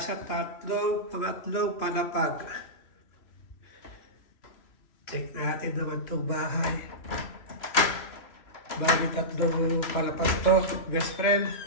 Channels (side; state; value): right; late; 3.0 ms